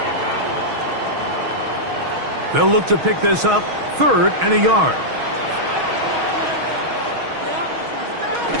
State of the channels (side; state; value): left; late; 6.3 ms